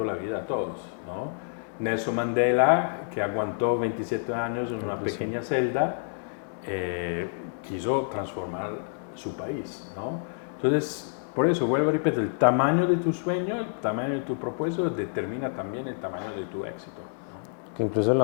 la vida a todos, ¿no? Nelson Mandela, que aguantó 27 años en una pequeña celda, quiso transformar su país, ¿no? Entonces, por eso, vuelvo a repetir, el tamaño de tu sueño, el tamaño de tu propósito determina también el tamaño de tu éxito, ¿no? Que incluso la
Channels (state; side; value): silent; right; 59 dB below the other